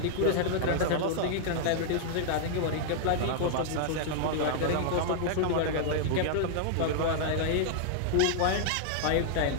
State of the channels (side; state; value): both; different; correlation -0.01